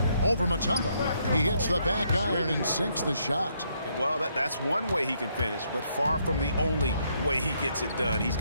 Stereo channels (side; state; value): both; inverted; correlation -0.73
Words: Over Mutombo. He hits the back iron and sinks the shot. Well, that's one way he can finish, but far from the only way he gets it done. He's